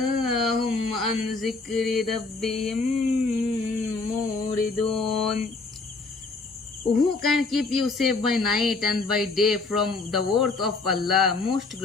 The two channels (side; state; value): right; quieter; 3.8 dB